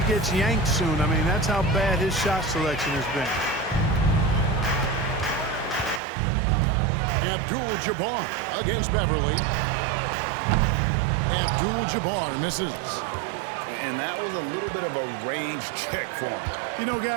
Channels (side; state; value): left; drops out; at 6.0 s